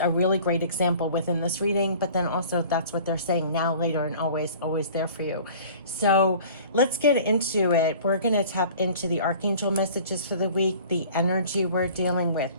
really great example within this reading, but then also that's what they're saying now, later, and always, always there for you. So let's get into it. We're going to tap into the archangel messages for the week, the energy we're dealing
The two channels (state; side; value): inverted; both; correlation -0.46